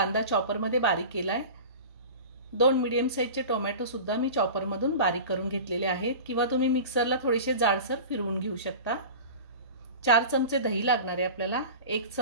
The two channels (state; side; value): inverted; both; correlation -0.34